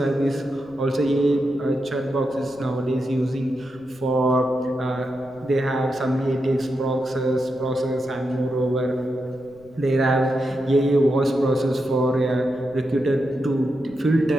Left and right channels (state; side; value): noise; right; rumble, 27 dB below the sound